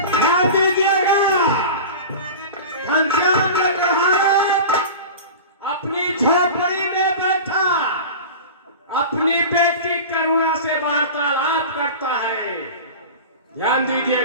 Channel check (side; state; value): both; inverted; correlation -0.31